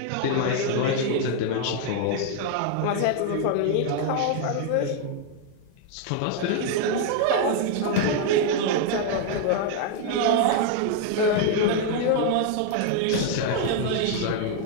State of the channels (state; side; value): different; both; correlation 0.00